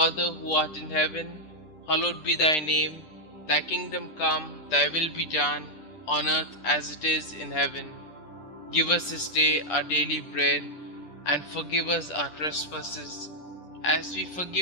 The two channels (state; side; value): late; right; 10 ms